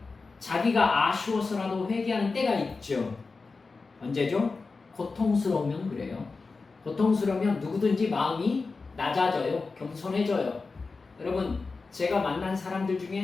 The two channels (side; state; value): right; quieter; 4.2 dB